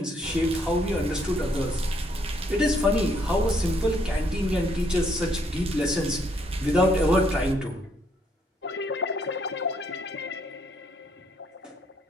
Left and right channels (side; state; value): both; normal; correlation 0.70